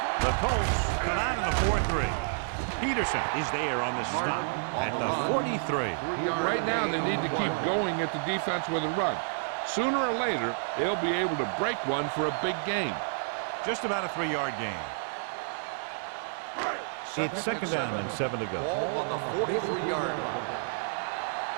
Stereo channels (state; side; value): silent; left; digital silence